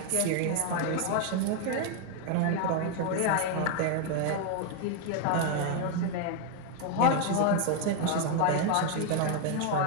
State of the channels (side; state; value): both; different; correlation 0.01